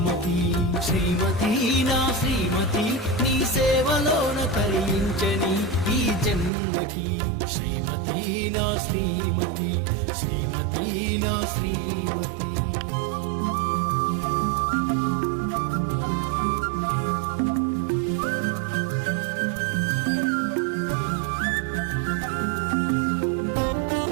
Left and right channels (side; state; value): left; drops out; at 6.5 s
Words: శ్రీమతి నా శ్రీమతి, నీ సేవలోన తరించని ఈ జన్మకి. శ్రీమతి నా శ్రీమతి, శ్రీమతి నా శ్రీమతి.